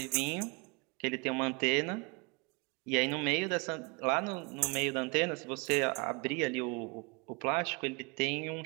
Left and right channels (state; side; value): quieter; left; 30.0 dB